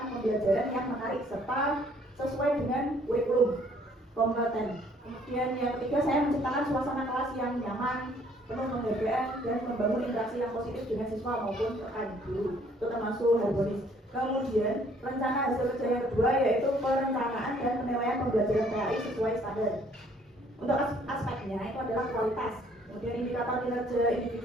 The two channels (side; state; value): both; normal; correlation 0.61